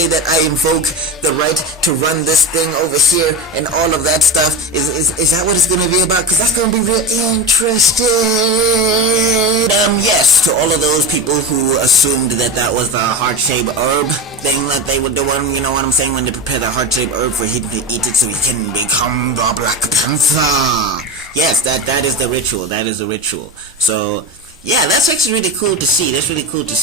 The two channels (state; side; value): normal; both; correlation 0.23